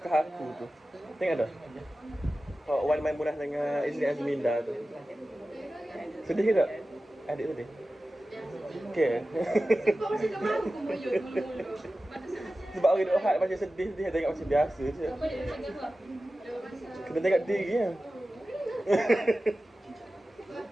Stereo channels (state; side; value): normal; both; correlation 0.95